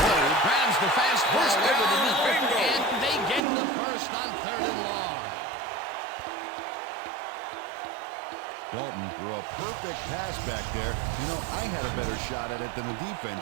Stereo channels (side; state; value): left; drops out; at 3.4 s